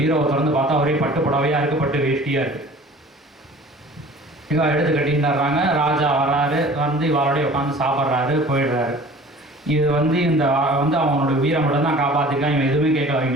திறந்து பார்த்தா ஒரே பட்டு புடவையாக இருக்குது, பட்டு வேஷ்டியாக இருக்குது. இவ எடுத்து கட்டின்றாங்க. ராஜா வர்றாரு, வந்து இவரோடய உட்காந்து சாப்பிட்றாரு, போயிடுறாரு. இது வந்து இந்த வந்து அவனோட வீரை மட்டும் தான் காப்பாற்றிருக்கான். இவன் எதுவுமே கேட்கல,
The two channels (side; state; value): both; normal; correlation 0.45